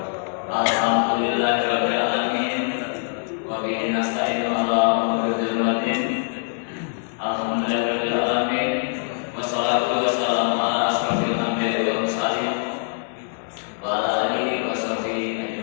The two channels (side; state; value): right; silent; 63 dB below the other